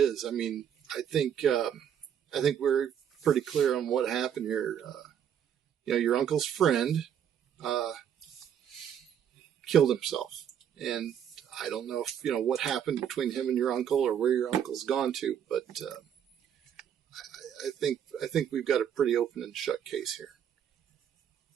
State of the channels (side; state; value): left; quieter; 9.0 dB